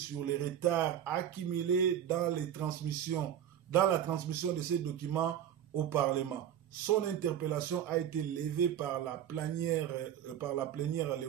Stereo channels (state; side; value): quieter; left; 10.0 dB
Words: les retards accumulés dans la transmission de ces documents au Parlement. Son interpellation a été levée par la plénière le